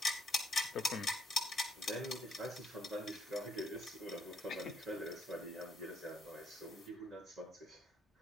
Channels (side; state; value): both; normal; correlation 0.69